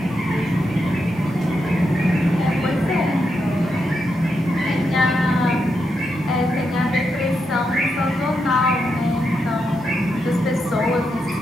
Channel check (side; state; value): both; normal; correlation 0.84